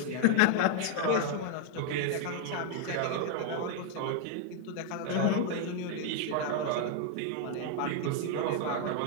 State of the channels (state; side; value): different; both; correlation 0.00